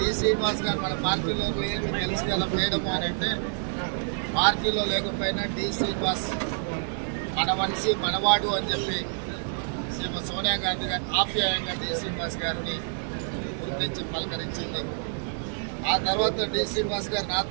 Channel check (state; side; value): silent; left; digital silence